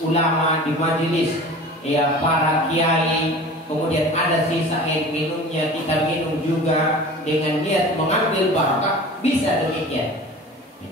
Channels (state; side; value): normal; both; correlation 0.39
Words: ulama, di majelis ya para kiai, kemudian ada sisa air minumnya, kita minum juga dengan niat mengambil barakah, bisa demikian.